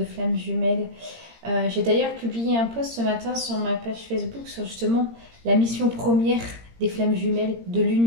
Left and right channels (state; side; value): late; left; 17 ms